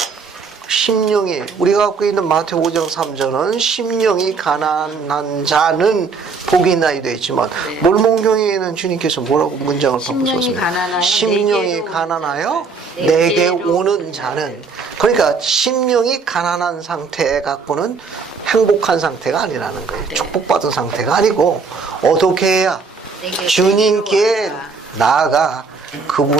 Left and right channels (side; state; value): left; quieter; 4.8 dB